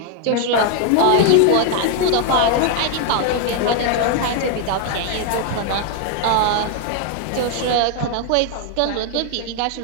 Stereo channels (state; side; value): different; both; correlation 0.00